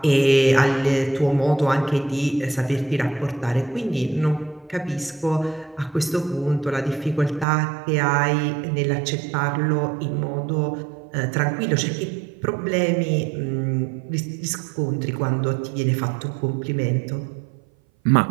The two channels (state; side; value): drops out; left; at 7.5 s